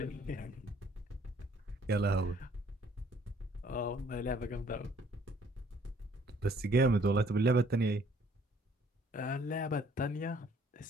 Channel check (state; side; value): normal; both; correlation 0.61